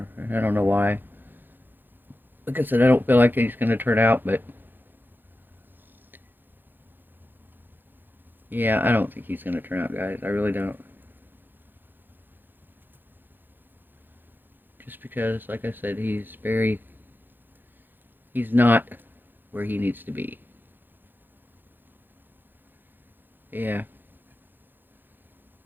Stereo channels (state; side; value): late; left; 0.093 ms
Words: I don't know why. Like I said, I don't feel like he's going to turn out, but... Yeah, I don't think he's going to turn out, guys. I really don't. Just because, like I said, he's not where he needs to be. Yeah.